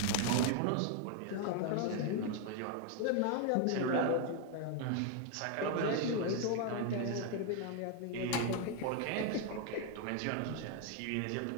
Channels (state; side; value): different; both; correlation 0.00